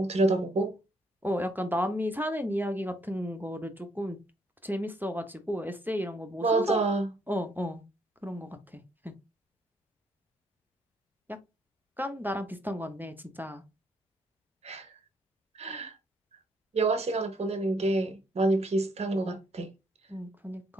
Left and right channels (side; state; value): both; normal; correlation 0.70